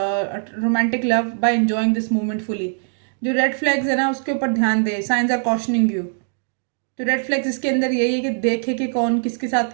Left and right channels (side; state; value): left; silent; 65 dB below the other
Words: romantic love by enjoying this moment fully. जो रेड फ्लैग्स है ना उसके ऊपर ध्यान दे। Signs are cautioning you. तो रेड फ्लैग्स इसके अंदर यही है कि देखे कि कौन किसके साथ